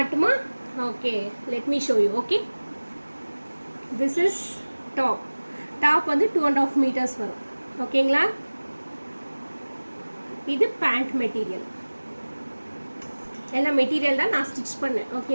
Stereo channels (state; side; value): inverted; both; correlation -1.00